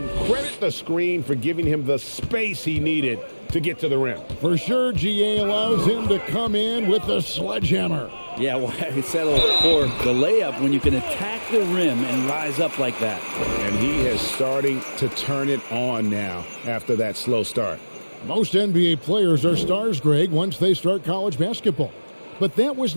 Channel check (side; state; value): both; inverted; correlation -1.00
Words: credit the screen for giving him the space he needed to get to the rim. For sure, GA allows him to come in with the sledgehammer. Yeah, well, I settled for the layup when you can attack the rim and rise up like that. And he is starting to turn it on now after that slow start. Most NBA players are stars, Greg, once they start college basketball. But that was